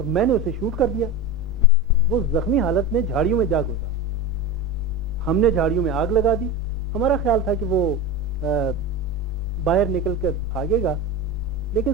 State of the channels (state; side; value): noise; right; hum, 23 dB below the sound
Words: मैंने उसे शूट कर दिया। वो जख्मी हालत में झाड़ियों में जा घुसा। हमने झाड़ियों में आग लगा दी। हमारा ख्याल था कि वो बाहर निकल कर भागेगा, लेकिन